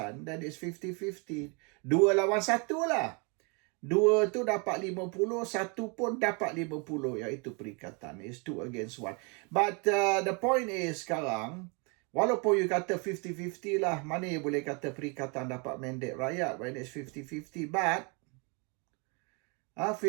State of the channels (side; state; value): left; quieter; 32.9 dB